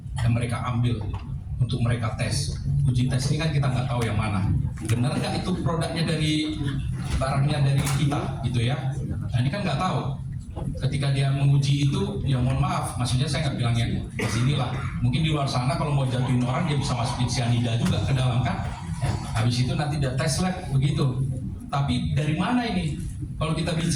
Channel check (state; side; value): identical; both; correlation 1.00